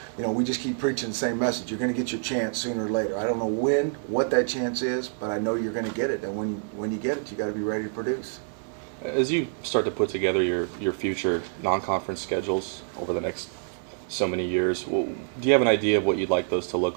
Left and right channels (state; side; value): silent; left; 60 dB below the other